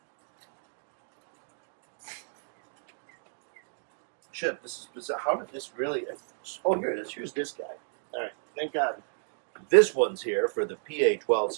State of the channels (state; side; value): silent; left; digital silence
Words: shit, this is bizarre. How did this really... Oh, here it is. Here's this guy. All right, thank God. This one's here for the